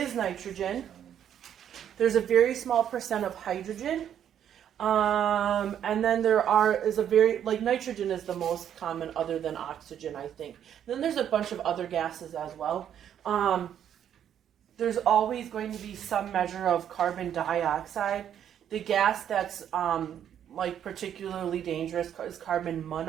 nitrogen. There's a very small percent of hydrogen. And then is a very, like, nitrogen is the most common other than oxygen, I think. Then there's a bunch of other gases as well. There's always going to be some measure of carbon dioxide. The gas that's like particularly dangerous is carbon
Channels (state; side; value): quieter; left; 9.6 dB